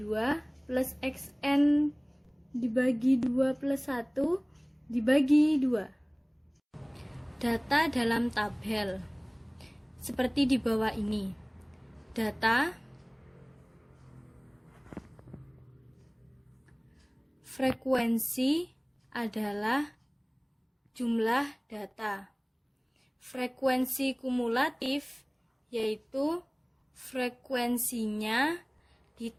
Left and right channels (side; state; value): both; identical; correlation 1.00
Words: plus Xn dibagi 2 plus 1 dibagi 2. Data dalam tabel seperti di bawah ini. Data Frekuensi adalah jumlah data. Frekuensi kumulatif yaitu frekuensinya